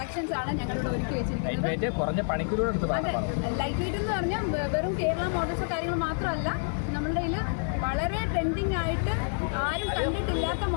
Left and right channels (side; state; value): right; silent; digital silence